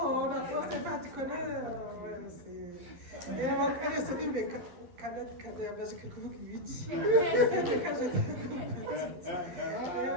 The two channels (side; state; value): left; late; 12 ms